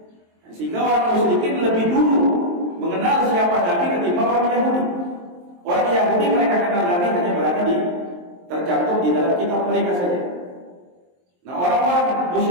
Sehingga orang musyrikin lebih dulu mengenal siapa Nabi ketimbang orang Yahudi. Orang Yahudi mereka kenal Nabi hanya berada tercantum di dalam kitab mereka saja. Nah orang-orang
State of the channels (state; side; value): late; left; 23 ms